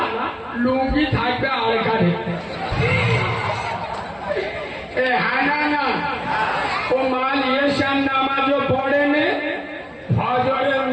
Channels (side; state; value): both; identical; correlation 1.00